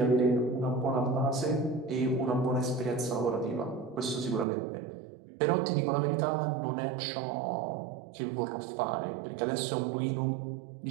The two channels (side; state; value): left; drops out; at 4.5 s